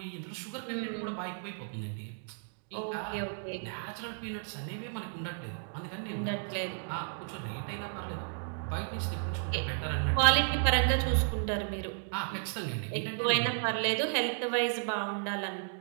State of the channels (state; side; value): silent; left; digital silence